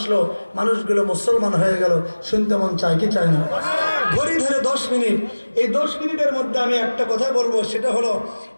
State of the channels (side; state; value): both; inverted; correlation -1.00